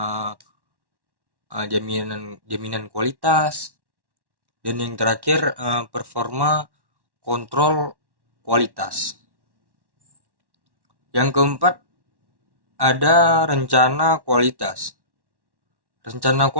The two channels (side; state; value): left; late; 1.1 ms